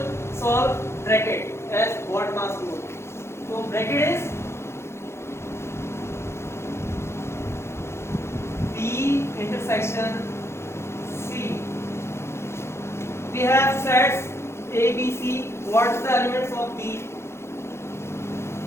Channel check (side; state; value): right; late; 0.13 ms